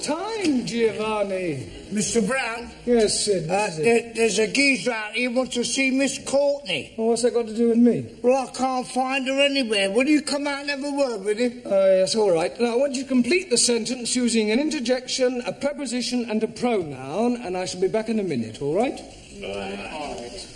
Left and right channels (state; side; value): identical; both; correlation 1.00